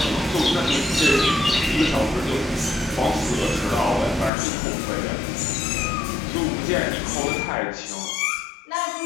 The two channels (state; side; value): drops out; right; at 4.3 s